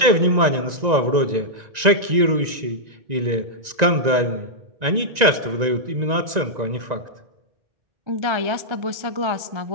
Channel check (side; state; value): left; late; 1.9 ms